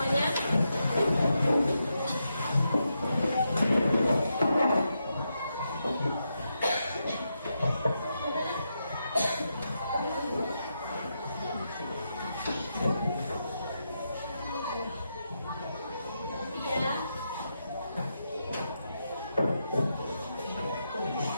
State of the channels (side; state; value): both; inverted; correlation -0.84